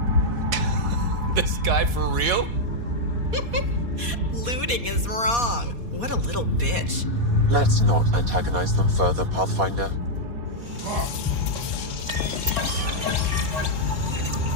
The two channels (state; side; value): late; left; 4.2 ms